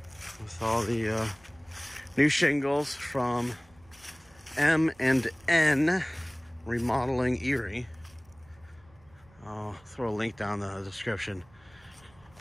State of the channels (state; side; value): noise; right; rumble, 29 dB below the sound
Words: with all the new shingles from M&N Remodeling Erie. I'll throw a link down in the description